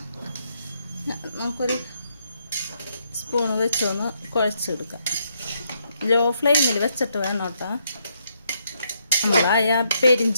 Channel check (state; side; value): inverted; both; correlation -0.76